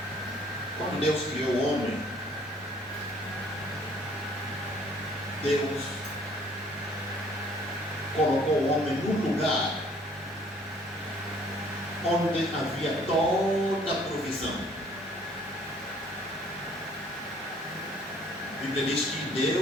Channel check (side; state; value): both; normal; correlation 0.59